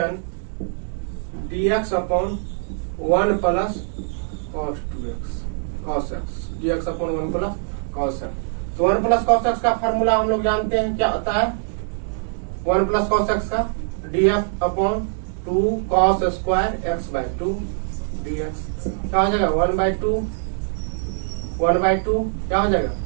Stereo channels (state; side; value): silent; left; digital silence